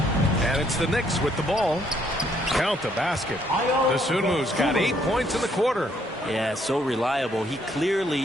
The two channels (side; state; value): both; normal; correlation 0.69